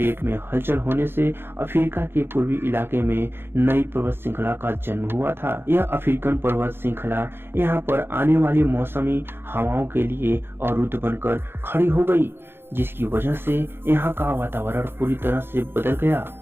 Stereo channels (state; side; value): late; left; 0.11 ms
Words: में हलचल होने से अफ्रीका के पूर्वी इलाके में नई पर्वत श्रृंखला का जन्म हुआ था। यह अफ्रीकन पर्वत श्रृंखला यहाँ पर आने वाली मौसमी हवाओं के लिए अवरुद्ध बनकर खड़ी हो गई, जिसकी वजह से यहाँ का वातावरण पूरी तरह से बदल गया